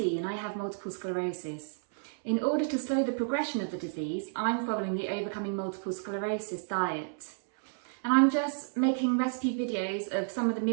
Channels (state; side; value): silent; left; 57 dB below the other